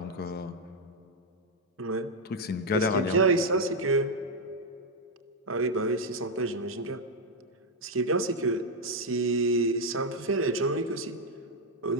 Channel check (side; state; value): both; normal; correlation 0.01